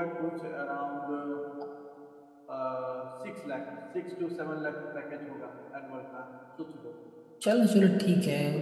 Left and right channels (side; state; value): both; identical; correlation 1.00